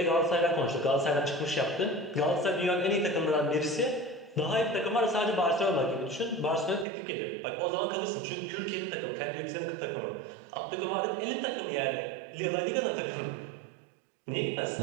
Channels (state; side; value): drops out; left; at 6.9 s